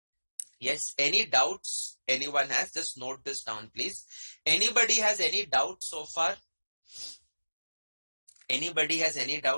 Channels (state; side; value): inverted; both; correlation -1.00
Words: Yes. Any doubts anyone has? Just note this down, please. Anybody has any doubts so far? Anybody has any